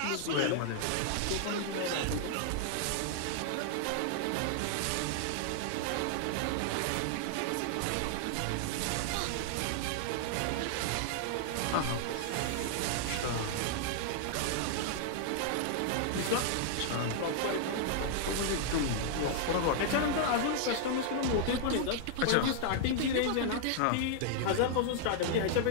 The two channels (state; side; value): different; both; correlation -0.01